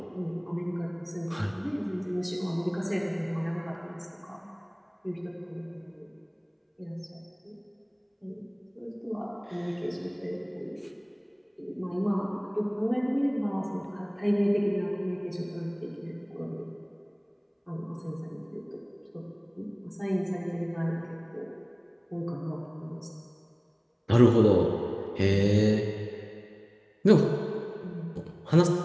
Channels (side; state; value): both; identical; correlation 1.00